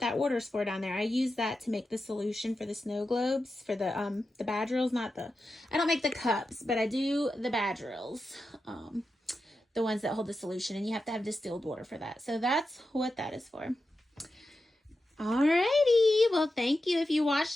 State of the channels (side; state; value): both; normal; correlation 0.90